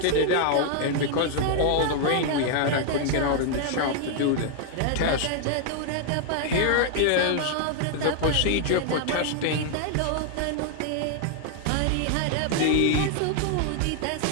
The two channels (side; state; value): both; different; correlation 0.00